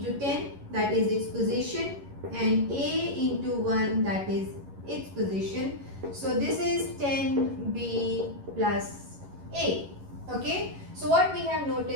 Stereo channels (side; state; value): left; late; 11 ms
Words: 10, that is its position, and A into 1, that is its position. So, this is 10B plus A. Okay. So, what we have